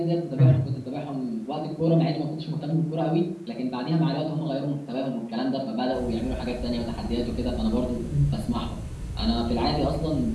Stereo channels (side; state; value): both; identical; correlation 1.00